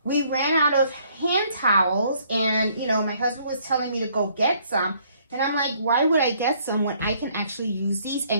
we ran out of hand towels, and my husband was telling me to go get some, and I'm like, why would I get some when I can actually use these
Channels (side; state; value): both; inverted; correlation -0.64